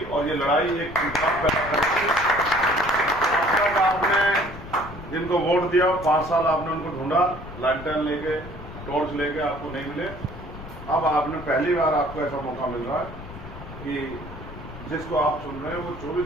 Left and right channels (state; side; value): noise; left; rumble, 13 dB below the sound